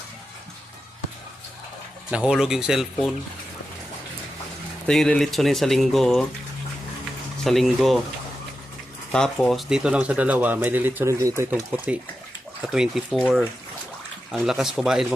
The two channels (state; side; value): normal; both; correlation 0.90